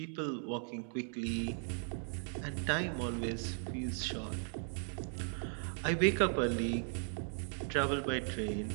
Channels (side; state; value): left; silent; 53 dB below the other